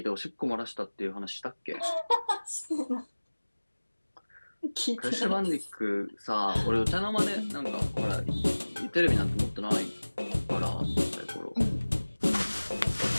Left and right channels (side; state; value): both; inverted; correlation -1.00